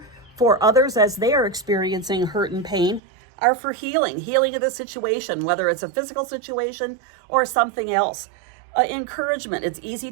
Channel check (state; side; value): drops out; left; at 3.0 s